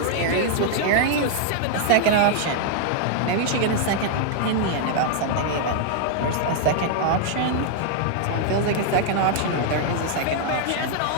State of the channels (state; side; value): different; both; correlation -0.01